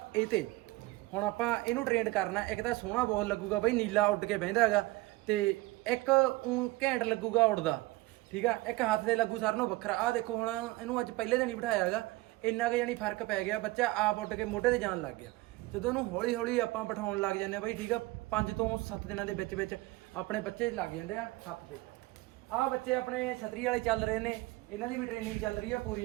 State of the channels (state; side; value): quieter; left; 20.7 dB